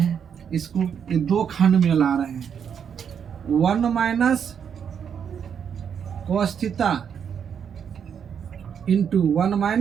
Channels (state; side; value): quieter; left; 7.6 dB